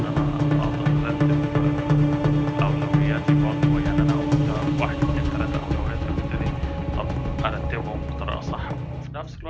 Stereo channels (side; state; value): both; identical; correlation 1.00